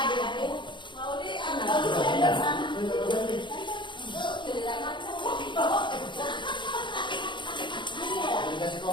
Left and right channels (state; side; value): late; right; 0.23 ms